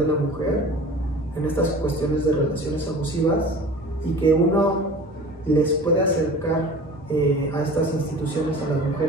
la mujer en estas cuestiones de relaciones abusivas y que uno les puede acercar a estas instituciones a las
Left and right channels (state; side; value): normal; both; correlation 0.41